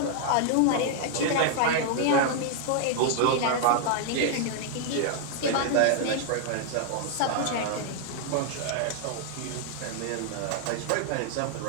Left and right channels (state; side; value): different; both; correlation 0.00